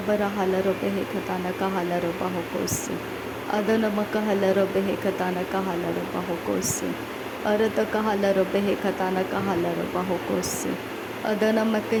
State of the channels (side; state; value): both; identical; correlation 1.00